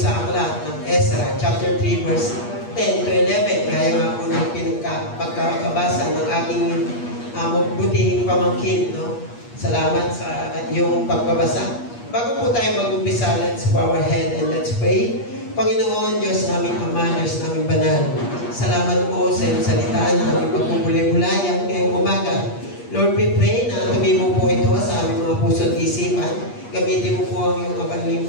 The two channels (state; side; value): late; right; 8.4 ms